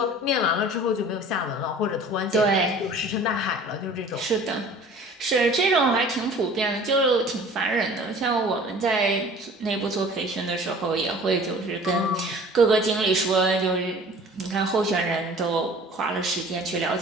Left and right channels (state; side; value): normal; both; correlation 0.46